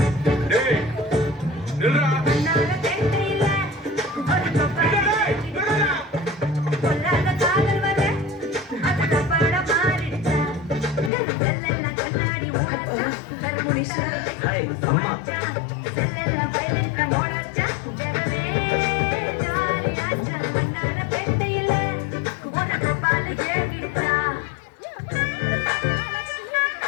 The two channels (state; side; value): drops out; right; at 11.1 s